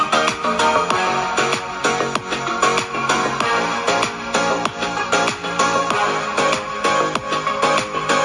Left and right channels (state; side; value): identical; both; correlation 1.00